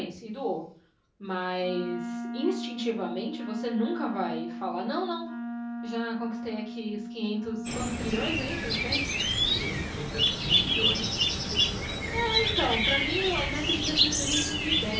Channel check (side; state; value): both; identical; correlation 1.00